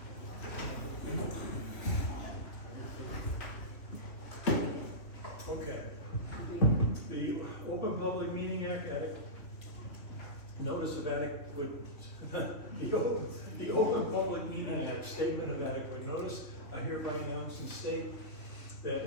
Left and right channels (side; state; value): right; late; 2.8 ms